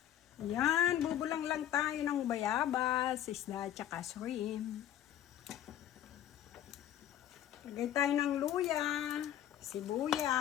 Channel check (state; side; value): quieter; right; 11.3 dB